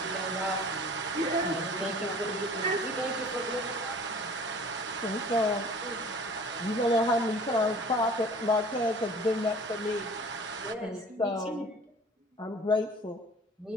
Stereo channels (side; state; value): both; normal; correlation 0.46